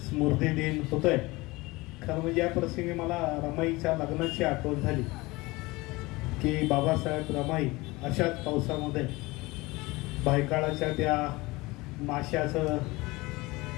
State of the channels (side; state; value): right; quieter; 22.1 dB